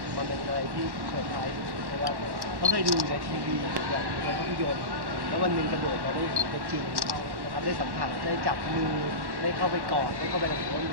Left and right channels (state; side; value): late; left; 1.1 ms